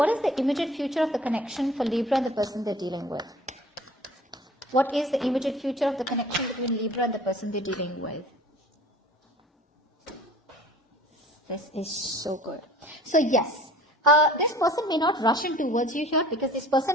is the immediate future of the connection for Libra and the person they're dealing with? What is the immediate future of the connection between Libra and the person they're dealing with? This is so good. So yes, this person may not rush in towards you here because this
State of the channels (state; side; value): normal; both; correlation 0.47